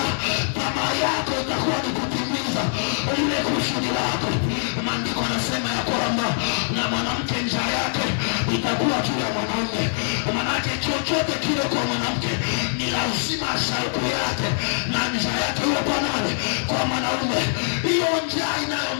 tamaa yako itakuwa ni kutimiza ile kusudi lako. Maandiko yanasema ya kwamba na mwanamke njaa yake itakuwa juu ya mwanaume. Manake chochote kile kwa mwanamke ni lazima shauku yake na njaa yake iwe kwa nani? Kwa mwanaume. Hiyo njaa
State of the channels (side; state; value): right; silent; digital silence